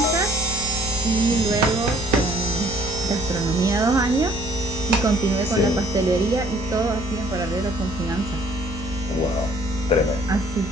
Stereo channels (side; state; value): both; normal; correlation 0.58